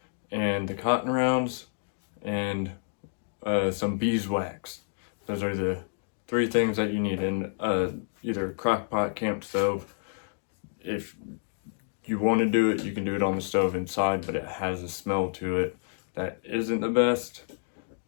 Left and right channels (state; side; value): silent; right; digital silence